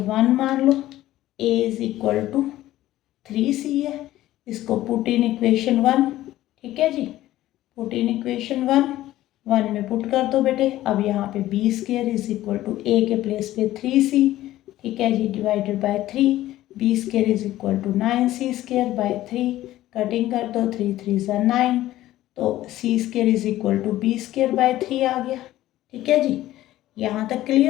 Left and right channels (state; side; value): quieter; right; 14.8 dB